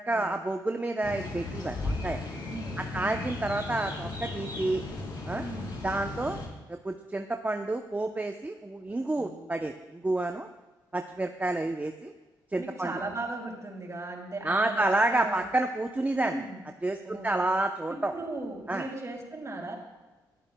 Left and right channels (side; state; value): both; normal; correlation 0.83